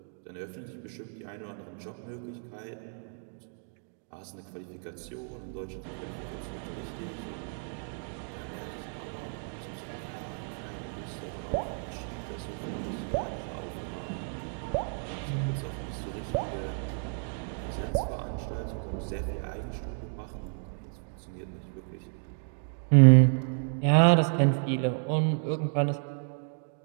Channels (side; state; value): left; silent; 57 dB below the other